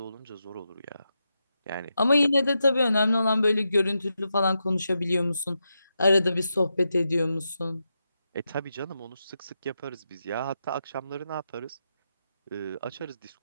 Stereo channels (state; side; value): inverted; both; correlation -0.86